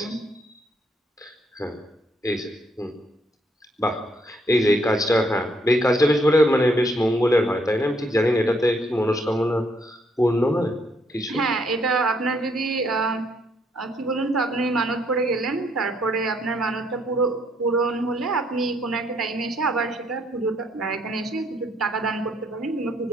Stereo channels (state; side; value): normal; both; correlation 0.70